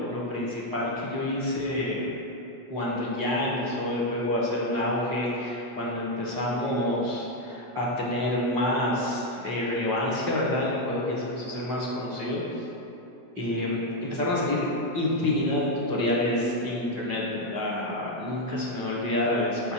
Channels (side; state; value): left; late; 16 ms